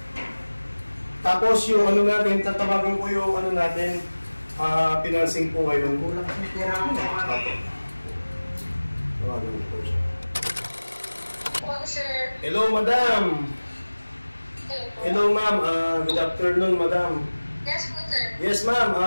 Tapos yung ano natin, tatawagan po yung ano natin, financing po ngayon. Kulang sa pera ko. Tawagan po siya. Hello, sir. Hello, madam. Hello, ma'am. Good afternoon, madam. Yes po, sir. Yes, ma'am.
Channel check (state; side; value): inverted; both; correlation -1.00